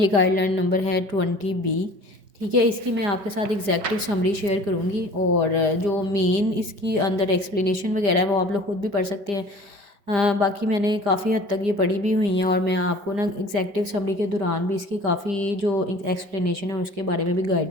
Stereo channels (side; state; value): left; late; 4.9 ms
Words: गाइडलाइन नंबर है 20B। ठीक है, इसकी मैं आपके साथ एग्जैक्टिव समरी शेयर करूँगी और जो मेन इसकी अंदर एक्सप्लेनेशन वगैरह है वो आप लोग खुद भी पढ़ सकते हैं। बाकी मैंने काफ़ी हद तक ये पढ़ी भी हुई हैं और मैं आपको ना एग्जैक्टिव समरी के दौरान भी इसकी काफ़ी जो एक्सप्लेनेशन है उसके बारे में भी